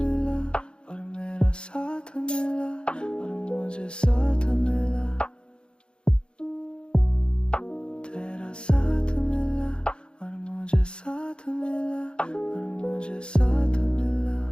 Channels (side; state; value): right; late; 0.053 ms